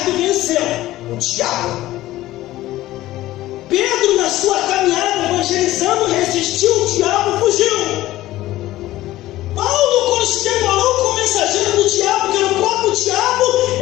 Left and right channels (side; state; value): right; quieter; 15.9 dB